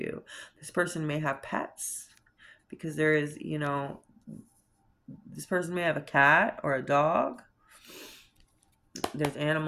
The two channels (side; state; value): both; identical; correlation 1.00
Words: This person may have pets because there is, this person may have a cat or a dog. There's